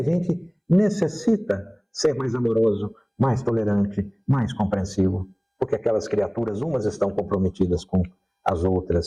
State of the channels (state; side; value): identical; both; correlation 1.00